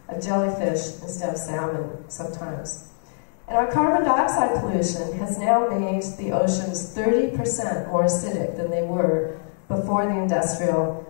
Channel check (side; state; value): right; silent; digital silence